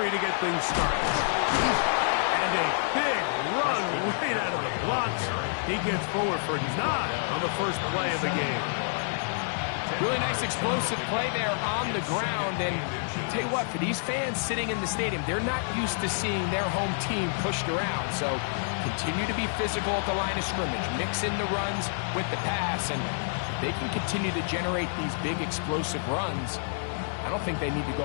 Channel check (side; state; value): right; silent; 59 dB below the other